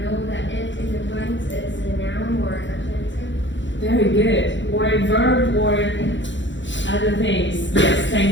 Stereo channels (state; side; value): late; right; 0.54 ms